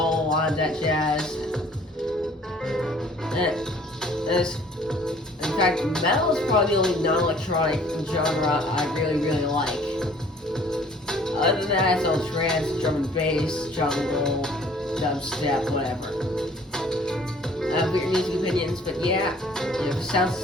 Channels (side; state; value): both; normal; correlation 0.55